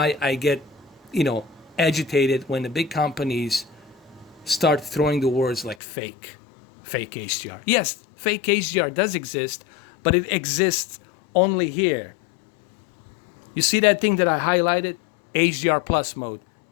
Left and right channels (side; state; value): right; drops out; at 5.8 s